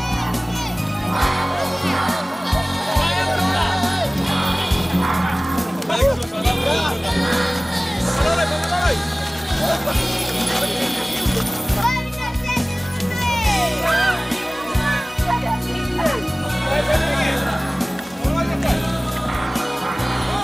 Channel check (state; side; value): normal; both; correlation 0.98